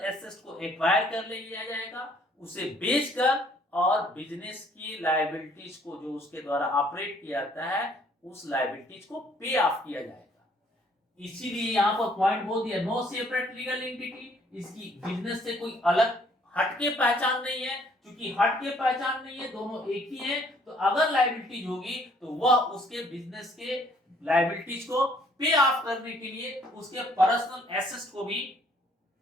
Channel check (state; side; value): normal; both; correlation 0.62